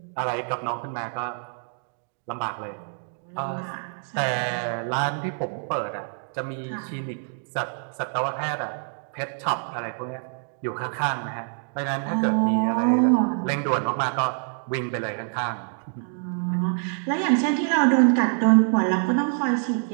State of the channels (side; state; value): left; silent; 61 dB below the other